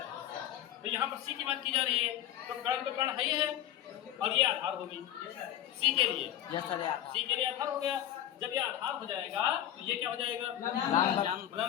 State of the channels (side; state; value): right; quieter; 11.9 dB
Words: तो यहाँ पर C की बात की जा रही है, तो कर्ण है ही है, और ये आधार होगी C के लिए। Yes sir. C के लिए आधार हो गया। जब ये आधार हो जाएगा तो ये क्या हो जाएगा? लंब